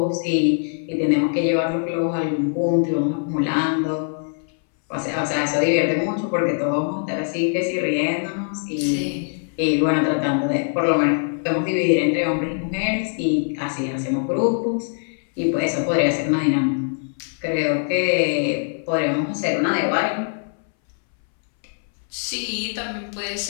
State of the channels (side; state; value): right; silent; 62 dB below the other